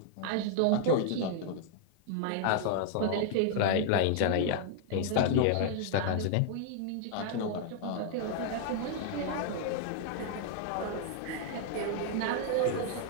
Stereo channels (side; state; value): both; different; correlation -0.01